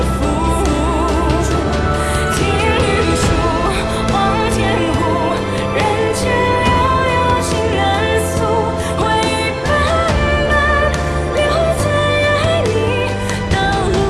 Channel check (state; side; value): identical; both; correlation 1.00